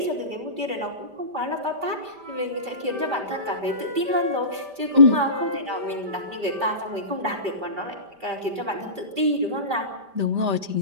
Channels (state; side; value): late; left; 5.1 ms